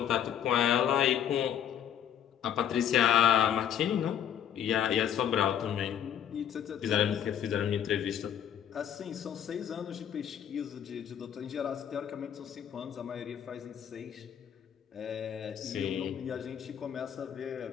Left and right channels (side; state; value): right; quieter; 9.4 dB